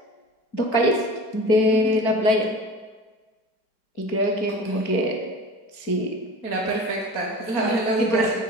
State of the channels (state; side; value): late; right; 4.5 ms